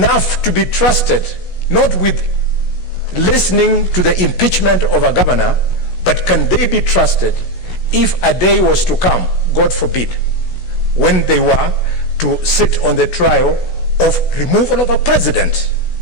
to be trusted, not with listening to the impeachment of a governor, but can they be trusted if a day was to come, God forbid, when they were to sit on the trial of removal of a president?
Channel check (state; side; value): late; right; 16 ms